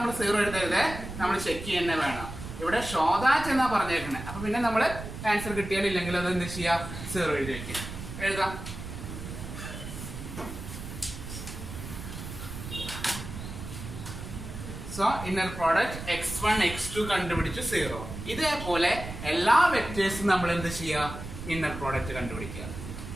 0 എഴുതരുത്, നമ്മൾ ചെക്ക് ചെയ്യുന്നേ വേണം. ഇവിടെ ഷോദാറ്റ് എന്നാ പറഞ്ഞേക്കണേ. അപ്പൊ പിന്നെ നമ്മള് ആൻസർ കിട്ടിയാലില്ലെങ്കിൽ അത് എന്ത് ചെയ്യാ? 0 എഴുതി വെക്കാം. എഴുതാം. So inner product x1 x2 കണ്ടുപിടിച്ചു 0. ഇതേപോലെ എല്ലാ വെക്ടേഴ്സും നമ്മൾ എന്ത് ചെയ്യുക? ഇന്നർ പ്രോഡക്റ്റ് കണ്ടുപിടിക്കുക.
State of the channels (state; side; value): noise; right; rumble, 9 dB below the sound